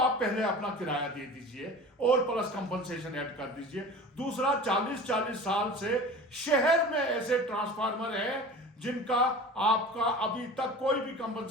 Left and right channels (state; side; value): normal; both; correlation 0.37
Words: पहले अपना किराया दे दीजिए और प्लस कंपनसेशन ऐड कर दीजिए। दूसरा, 40-40 साल से शहर में ऐसे ट्रांसफार्मर हैं जिनका आपका अभी तक कोई भी